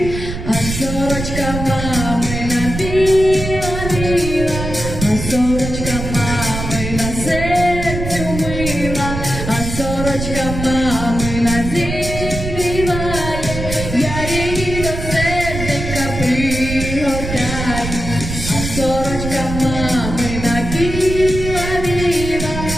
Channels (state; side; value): noise; right; rumble, 6 dB below the sound